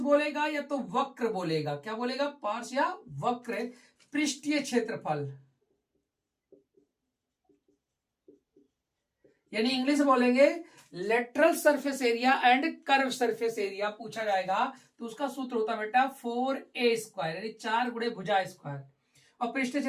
बोलेगा या तो वक्र बोलेगा? क्या बोलेगा? पार्श्व या वक्र पृष्ठीय क्षेत्रफल, यानी इंग्लिश बोलेंगे lateral surface area and curve surface area पूछा जाएगा तो उसका सूत्र होता है बेटा 4a², यानी 4 गुणे भुजा स्क्वायर, और पृष्ठीय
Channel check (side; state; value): both; identical; correlation 1.00